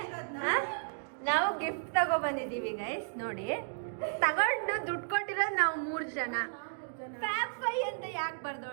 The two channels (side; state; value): left; silent; digital silence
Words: ನಾವು ಗಿಫ್ಟ್ ತಗೊಬಂದಿದ್ದೀವಿ ಗೈಸ್. ನೋಡಿ, ತಗೊಂಡು ದುಡ್ಡು ಕೊಟ್ಟಿರೋದು ನಾವು 3 ಜನ. ಫ್ಯಾಪ್ ಅಂತ ಯಾಕೆ